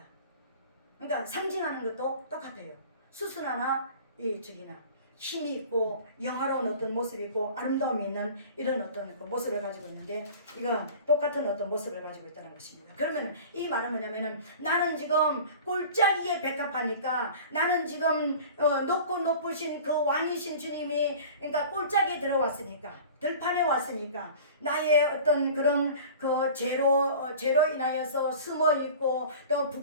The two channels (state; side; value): inverted; both; correlation -0.41